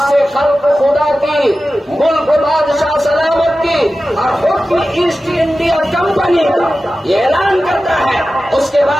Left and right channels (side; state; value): both; normal; correlation 0.94